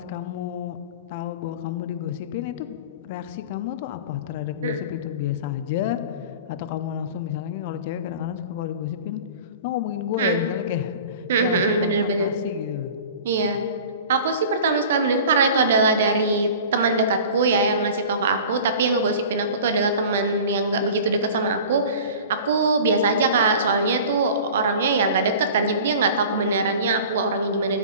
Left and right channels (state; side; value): inverted; both; correlation -0.40